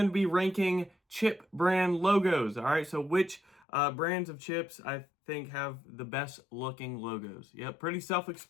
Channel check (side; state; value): right; drops out; at 3.7 s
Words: to be ranking chip brand logos. All right, so which brands of chips I think have the best looking logos. Yep, pretty